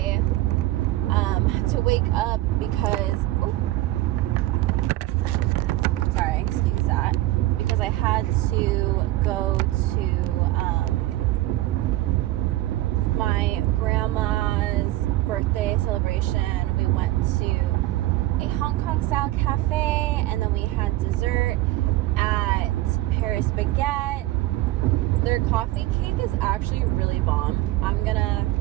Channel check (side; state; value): left; quieter; 16.9 dB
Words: had to wake up because, sorry, excuse that, because I had to go to my grandma's birthday celebration. We went to a Hong Kong style cafe, and then we had dessert at Paris Baguette. Their coffee cake is actually really bomb. I'm gonna